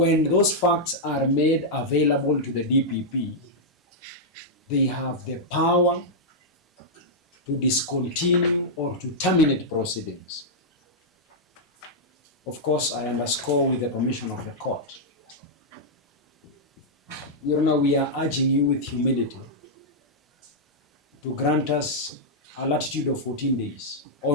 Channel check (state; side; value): normal; both; correlation -0.06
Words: those facts are made available to the DPP, they have the power to discontinue or to terminate proceedings. Of course, I underscore with the permission of the court. Your Honor, we are urging you with humility to grant us a latitude of 14 days